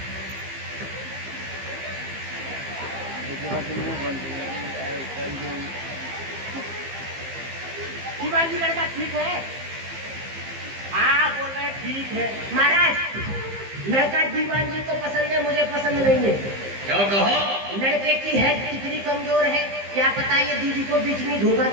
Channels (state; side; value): late; left; 15 ms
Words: दीवान जी लड़का ठीक है? हाँ बोल रहे ठीक है। महाराज लड़का दीवान जी को पसंद है, मुझे पसंद नहीं है। क्या कहा? लड़के की हेड कितनी कमजोर है, क्या पता ये दीदी को बीच में धोखा